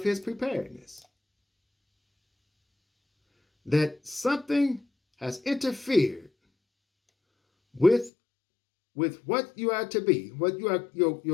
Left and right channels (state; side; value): drops out; right; at 8.1 s